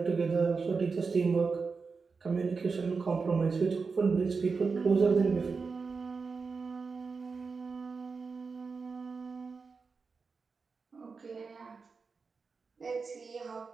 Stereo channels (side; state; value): left; quieter; 4.8 dB